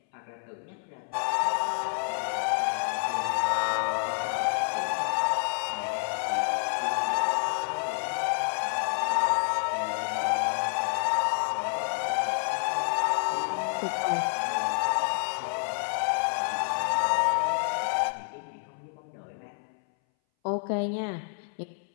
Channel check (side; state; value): right; silent; 59 dB below the other